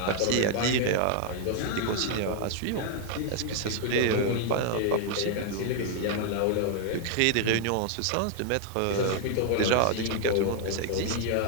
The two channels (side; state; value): both; different; correlation 0.00